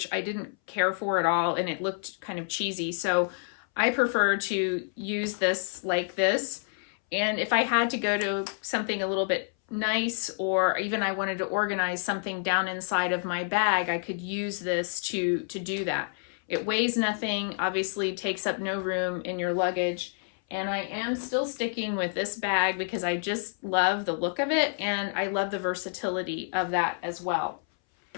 I didn't care for at all, and it looked kind of cheesy. So I prefer to use this like this. And if I had to go to something a little bit nice, or even I wanted to organize something down inside of my bag, I could use this to do that. It weighs nothing, obviously takes up no room in your luggage. And I am still sticking with this bag because I just love the look of it, and I love the versatility of that as well.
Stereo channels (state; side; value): silent; right; 59 dB below the other